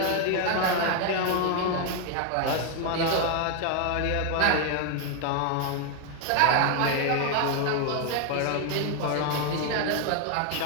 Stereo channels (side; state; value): both; different; correlation 0.01